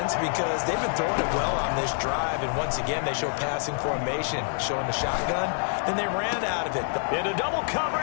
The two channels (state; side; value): silent; right; digital silence